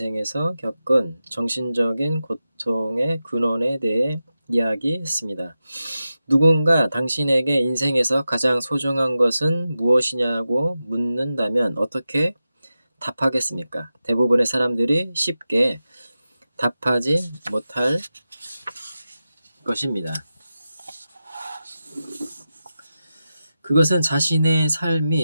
겪은 정신적인 고통의 근원에 대해 이야기했습니다. 누군가 당신에게 인생에서 가장 소중한 것은 무엇이냐고 묻는다면 어떻게 답하겠습니까? 대부분의 사람들이 쉽게 답하지 못할 것입니다. 그것은 자신의 삶이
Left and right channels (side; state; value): both; inverted; correlation -0.92